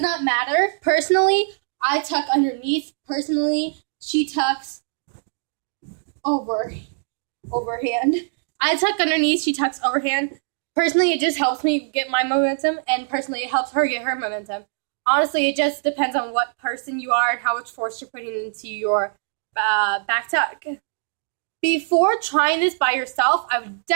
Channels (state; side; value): silent; left; digital silence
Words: not matter. Personally, I tuck underneath. Personally, she tucks overhand. I tuck underneath, she tucks overhand. Personally, it just helps me get my momentum, and personally, it helps her get her momentum. Honestly, it just depends on what person you are and how much force you're putting into your back tuck. Before trying this by yourself, I would